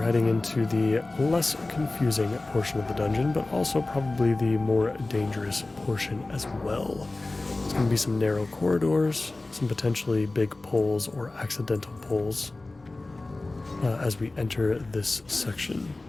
heading into the less confusing portion of the dungeon, but also probably the more dangerous portion as well. There's going to be some narrow corridors, some potentially big pulls or accidental pulls as we enter this section.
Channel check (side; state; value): right; quieter; 3.1 dB